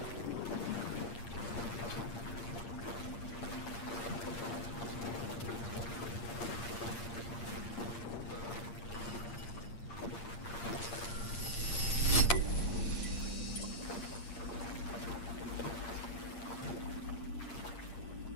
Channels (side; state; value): right; late; 8.6 ms